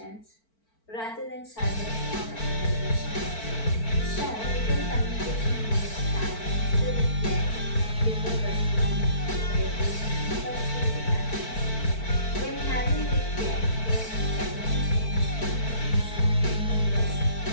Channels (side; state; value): right; late; 4.5 ms